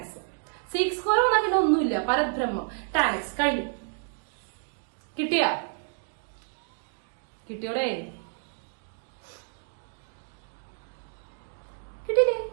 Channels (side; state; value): left; silent; digital silence